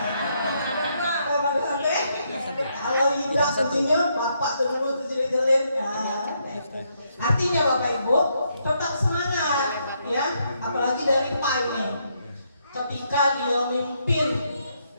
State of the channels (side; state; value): both; inverted; correlation -0.76